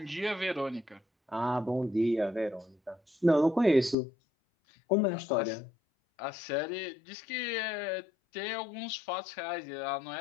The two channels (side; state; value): right; drops out; at 4.0 s